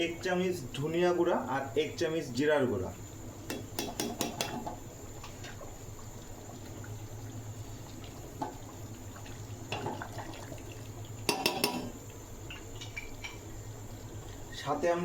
1 চামচ ধনিয়া গুঁড়া আর 1 চামচ জিরার গুঁড়া। সাথে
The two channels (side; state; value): both; identical; correlation 1.00